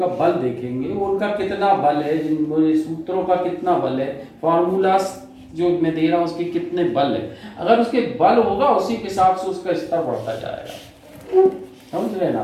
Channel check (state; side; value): identical; both; correlation 1.00